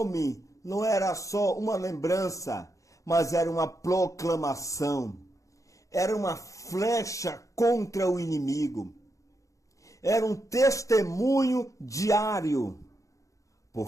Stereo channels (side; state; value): right; late; 0.16 ms